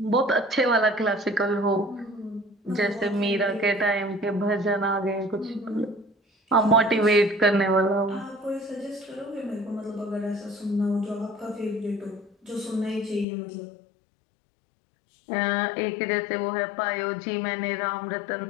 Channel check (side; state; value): right; drops out; at 13.2 s